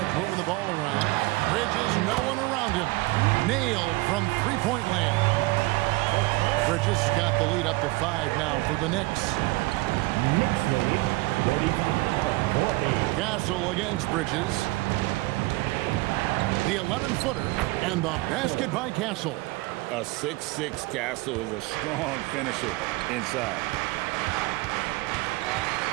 moving the ball around. Bridges, no one around him. Nailed from three-point land. Bridges got the lead up to 5 now for the Knicks. Castle against Bridges. The 11-footer and the basket by Castle. A 6'6" Castle is a strong finisher inside.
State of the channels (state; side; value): quieter; left; 22.5 dB